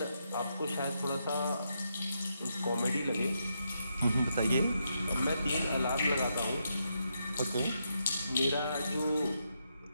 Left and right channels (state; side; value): inverted; both; correlation -0.81